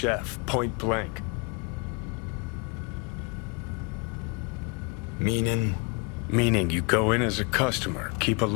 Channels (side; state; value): right; quieter; 30.5 dB